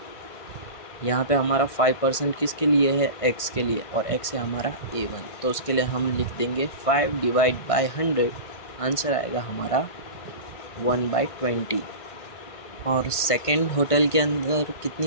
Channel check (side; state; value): right; late; 1.5 ms